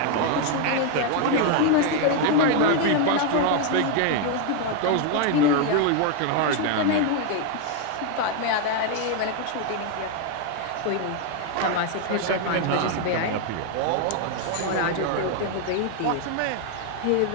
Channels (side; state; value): both; different; correlation 0.01